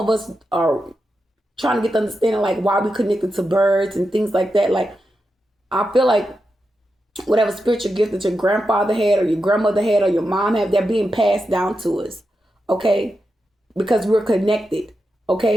us are trying to get the understanding like why we connected to birds and things like that. Like I feel like whatever spiritual gift that your grandfather had or your grandmother had or your mom had, they're being passed down to us, okay? Because we're connected,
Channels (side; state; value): both; normal; correlation 0.88